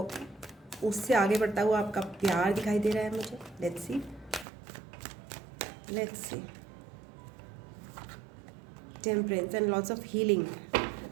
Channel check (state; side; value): drops out; left; at 4.5 s